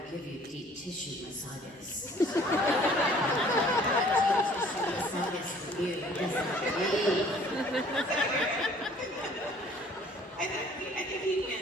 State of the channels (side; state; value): both; normal; correlation 0.55